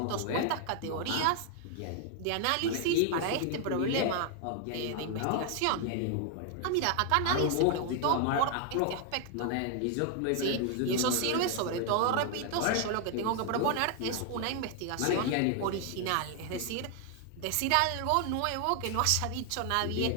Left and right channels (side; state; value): both; different; correlation 0.00